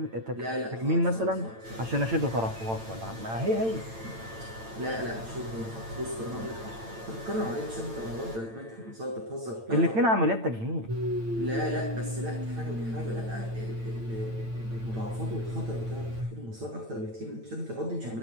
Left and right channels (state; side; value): late; left; 8.9 ms